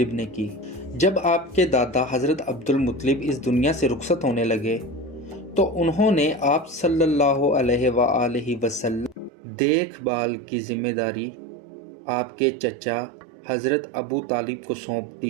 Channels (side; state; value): left; drops out; at 9.3 s